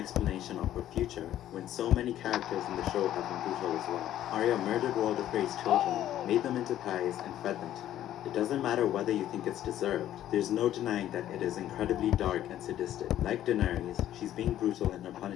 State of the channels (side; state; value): right; quieter; 12.2 dB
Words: of her future when so many characters in the show have been brutal as well. Arya murdered Walder Frey's children, made them into pies, and fed them to him. It doesn't matter whether you think it's deserved. There's no denying that it is incredibly dark and sadistic. Like Daenerys, she's being brutal in her